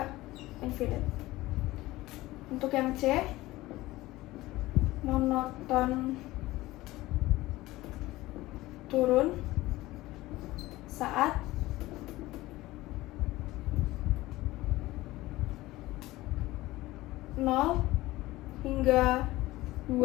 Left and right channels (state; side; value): quieter; right; 18.2 dB